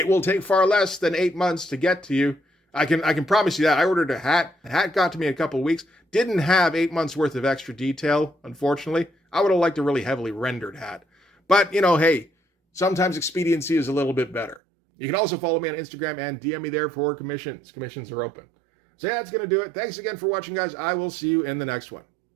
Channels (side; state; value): left; drops out; at 14.6 s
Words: will take far less than 8 months to get to you. I can promise you that. I ordered a hat. The hat got to me in a couple of weeks. Didn't have 8 months worth of extra detail, unfortunately. I would have liked a really heavily rendered hat. But, hey, sometimes expediency is a little bit better. You can also follow me on Instagram and DM me there for commissions. Commissions are open. So yeah, that's going to do it. Thanks again for watching, guys. I will see you in the next one.